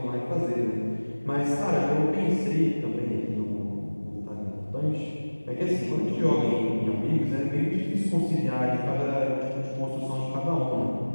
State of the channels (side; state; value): both; inverted; correlation -1.00